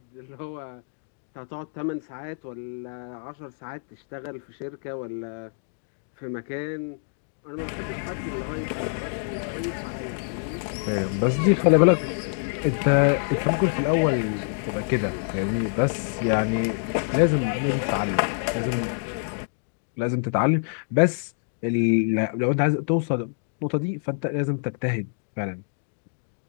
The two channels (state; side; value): silent; right; digital silence